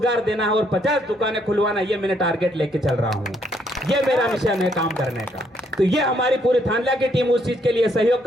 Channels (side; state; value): both; normal; correlation 0.71